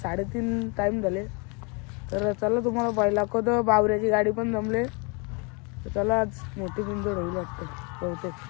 टाईम झाले. तर चला तुम्हाला पाहिलं दाखवतो. बावऱ्याची गाडी पण जमले. तर चला आज मोठी बिंदोड होईल वाटतं. बहुतेक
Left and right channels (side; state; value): right; quieter; 32.6 dB